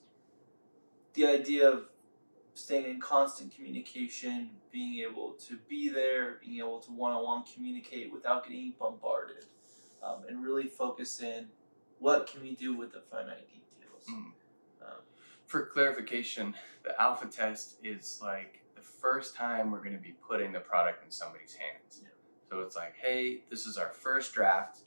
the idea of staying in constant communication, being able to be there, being able to one-on-one communicate without getting bombarded, and really focus in what can we do with the finite details. For clarification, the alpha test is like the first time we're going to be putting the product in somebody's hands. Yeah. So it's like, hey, this is our first draft.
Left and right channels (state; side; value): inverted; both; correlation -1.00